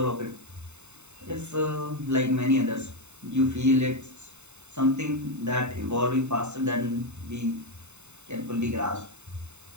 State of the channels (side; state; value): left; late; 0.82 ms